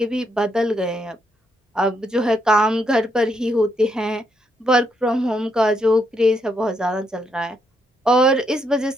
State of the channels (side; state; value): both; normal; correlation 0.77